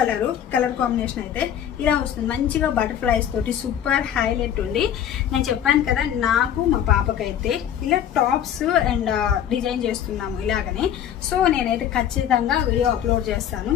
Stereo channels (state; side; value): quieter; right; 9.9 dB